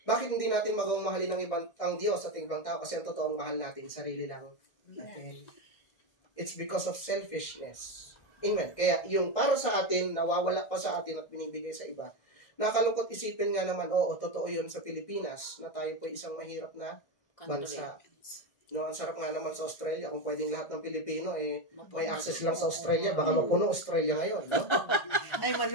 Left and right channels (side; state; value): right; late; 1.6 ms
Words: Bakit hindi natin magawang mahalin ang Diyos at ibang tao? Kasi ang totoong mahal natin, sarili lang natin. It's because of selfishness. Amen. Kaya yung para sa atin, nawawala pa sa atin at binibigay sa iba. Nakalungkot isipin nga naman, totoo yun sa Pilipinas, na tayo po isang mahirap na bansa. No, ang sarap nga naman sa Australia, kung pwedeng lahat ng Pilipino, may access lang sa Australia, baka mapuno Australia ngayon. No? Ay,